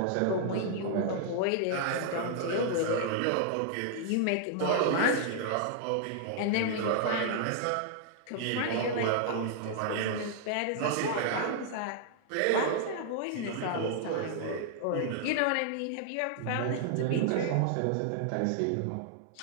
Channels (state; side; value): different; both; correlation -0.01